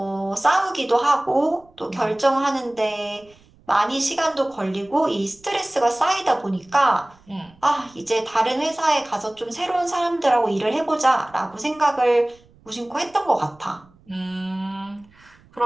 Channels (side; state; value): right; noise; rumble, 29 dB below the sound